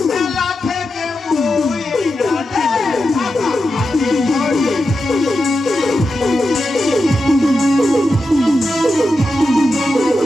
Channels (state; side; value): normal; both; correlation 0.89